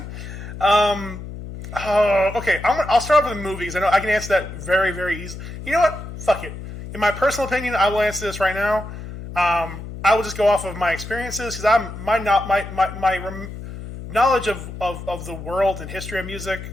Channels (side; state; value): left; noise; hum, 10 dB below the sound